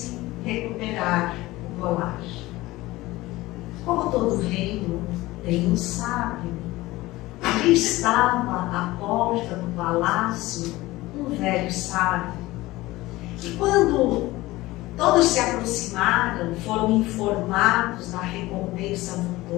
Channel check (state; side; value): quieter; right; 18.9 dB